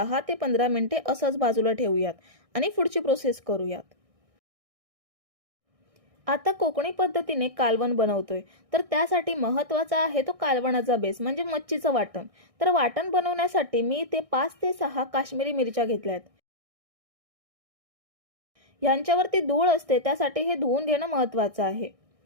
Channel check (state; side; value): late; left; 1.6 ms